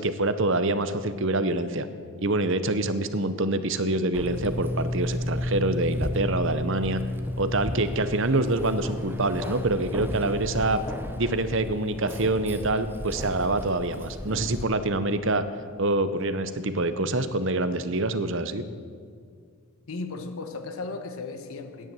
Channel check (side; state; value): both; normal; correlation 0.09